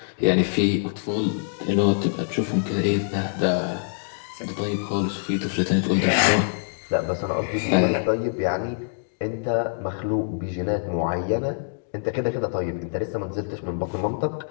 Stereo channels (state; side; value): silent; right; digital silence